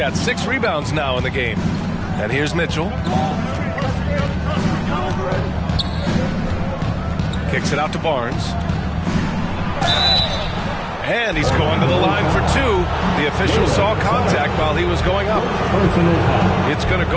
6 rebounds now in the game. And here's Mitchell. Kicks it out to Barnes. And he's going to the line for 2. The official saw contact while he was going up. It's going to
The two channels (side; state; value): both; identical; correlation 1.00